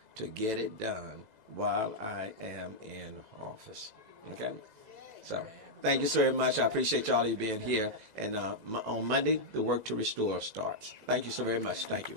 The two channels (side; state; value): left; late; 2.0 ms